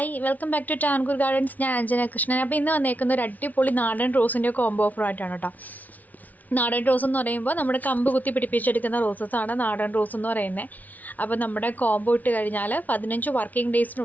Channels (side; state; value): right; late; 0.077 ms